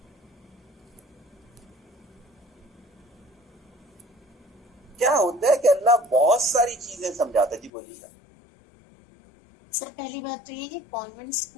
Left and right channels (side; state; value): right; drops out; at 7.7 s